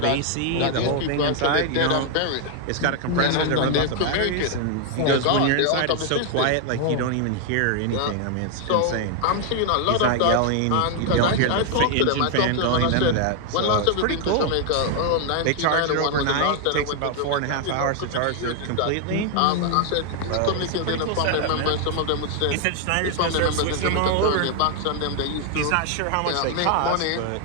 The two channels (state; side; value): different; both; correlation 0.00